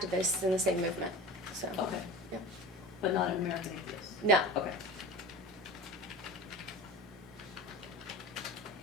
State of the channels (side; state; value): both; normal; correlation 0.34